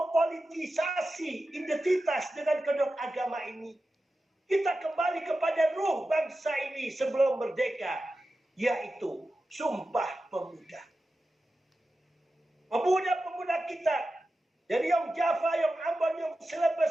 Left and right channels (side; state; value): both; normal; correlation 0.92